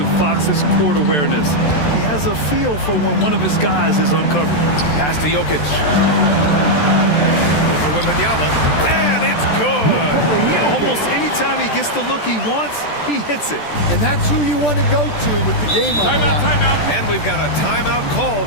Fox's court awareness. He has a feel for when one of his guys is uncovered. Pass to Jokic. Over Wembanyama. And it's good! Almost any time he gets the look he wants, he hits it. And that's who you want to go to with the game on the line. Timeout. And we've got a timeout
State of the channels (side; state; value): right; late; 14 ms